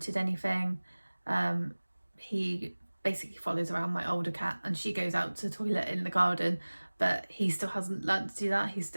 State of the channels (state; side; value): inverted; both; correlation -1.00